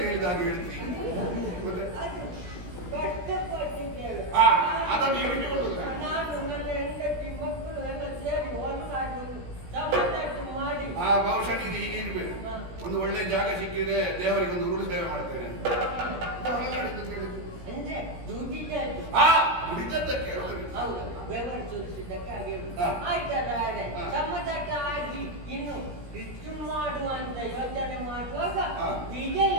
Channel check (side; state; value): left; late; 17 ms